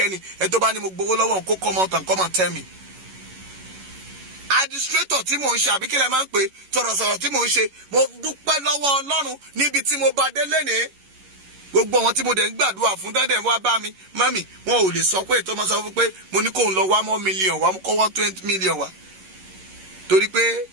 Ẹ tó bá ní mo gbowó lọ́wọ́ kó come out and come and tell me. Administrator tí mò ń ṣe àbí kí lẹ máa ń pè sọ̀rọ̀sọ̀rọ̀ tí mò ń ṣe mo dúpẹ́ lọ́wọ́ Ọlọ́run níbi tí mo bá dé lénìí. Gbogbo àwọn tí mo dẹ̀ ń gbàdúrà fún dẹ́dẹ̀ wá bá mi mami wọn ò lè sọ pé tó máa sọ fún pé mo ní kó ń lọ wá mọ́ million wá kó wá 20 million wá. Torí pé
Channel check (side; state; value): left; late; 11 ms